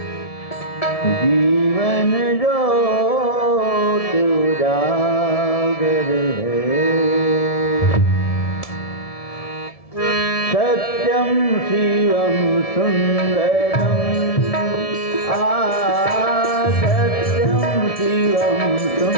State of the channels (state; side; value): late; right; 1.7 ms